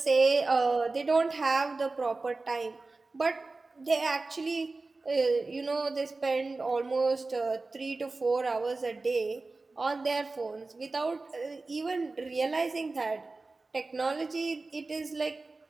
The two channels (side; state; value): left; quieter; 3.5 dB